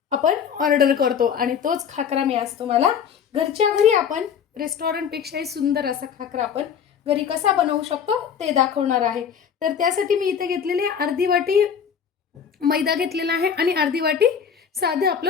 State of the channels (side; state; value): right; quieter; 7.5 dB